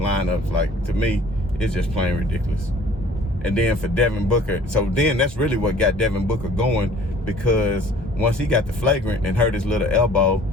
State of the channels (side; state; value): both; normal; correlation 0.52